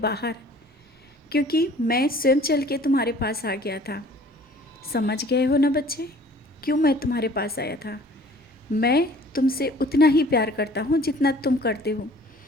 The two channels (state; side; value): normal; both; correlation 0.51